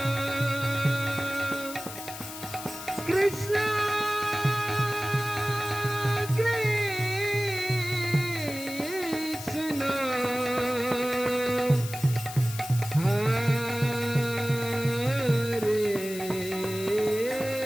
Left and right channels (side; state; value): left; noise; hiss, 11 dB below the sound